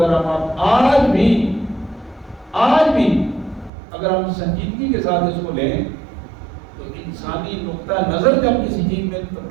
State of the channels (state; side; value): drops out; left; at 3.7 s